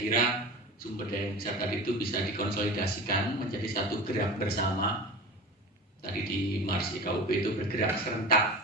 sumber daya yang besar tadi itu bisa dikonsolidasikan menjadi satu gerak bersama. Tadi di Mars IKUB itu bergerak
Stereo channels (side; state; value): both; normal; correlation 0.33